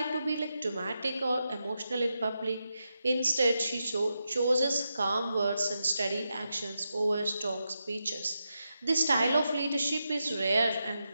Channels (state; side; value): inverted; both; correlation -0.87